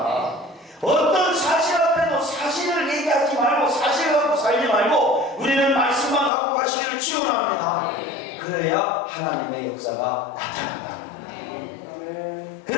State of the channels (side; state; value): right; drops out; at 6.3 s